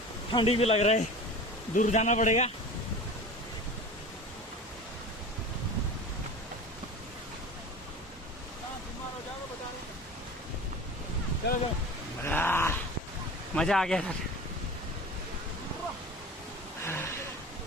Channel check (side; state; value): both; normal; correlation 0.35